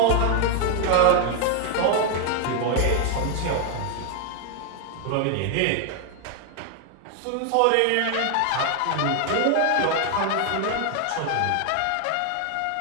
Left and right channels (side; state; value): both; different; correlation 0.00